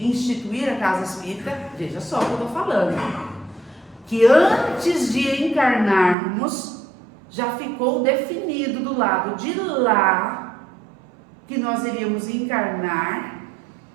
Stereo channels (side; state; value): left; drops out; at 6.2 s